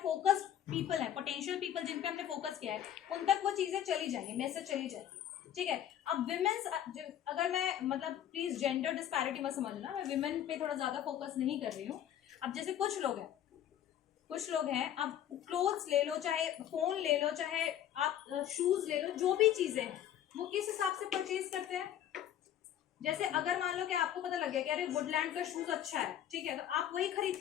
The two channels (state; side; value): quieter; right; 10.9 dB